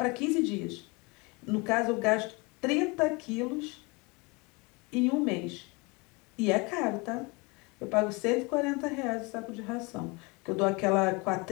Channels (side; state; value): right; quieter; 27.6 dB